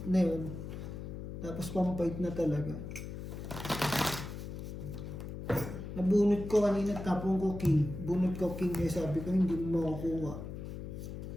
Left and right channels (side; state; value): left; noise; hum, 8 dB below the sound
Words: na yun. Tapos pang fight na talaga. Nabunot ko kanina, tapong ko king. Bunot ko king eh, sabi ko hindi mo makukuha.